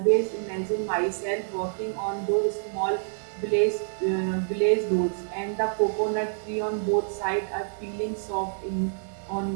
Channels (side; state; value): left; silent; digital silence